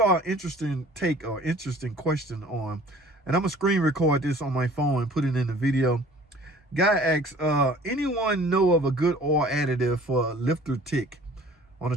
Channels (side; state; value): both; normal; correlation 0.50